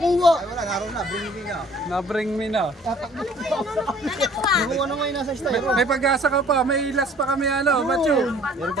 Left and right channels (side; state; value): both; normal; correlation 0.55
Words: Wala, naroon na. Bring me na. Na-bring me na. Nakuha na ngayon nasa styro. May pag-asa ka pa. May last pa kami ano, Matthew. Meron pa